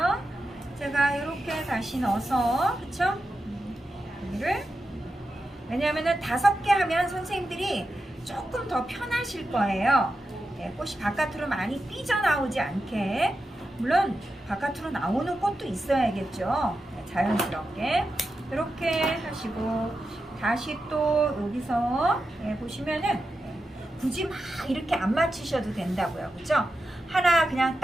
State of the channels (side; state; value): both; normal; correlation 0.89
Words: 제가 이렇게 다시 넣어서 그쵸? 여기를 왜냐하면 5개 하면 선생님들이 조금 더 편하실 거예요. 꽃이 바깥으로 많이 삐져나오지 않게. 물론 바깥으로 나오는 꽃도 있어야겠죠. 자연스럽게 이렇게 하시고 다시 또 여기서 보시면은 굳이 막 이렇게 안 맞추셔도 된다고요. 그죠? 하나 그냥